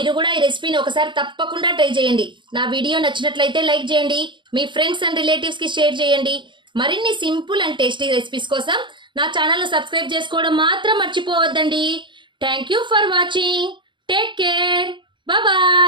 కూడా ఈ రెసిపీని ఒకసారి తప్పకుండా ట్రై చేయండి. నా వీడియో నచ్చినట్లయితే లైక్ చేయండి, మీ ఫ్రెండ్స్ అండ్ రిలేటివ్స్కి షేర్ చేయండి. మరిన్ని సింపుల్ అండ్ టేస్టీ రెసిపీస్ కోసం నా ఛానల్ను సబ్స్క్రైబ్ చేసుకోవడం మాత్రం మర్చిపోవద్దండి. Thank you for watching. Take care.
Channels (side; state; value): left; late; 0.23 ms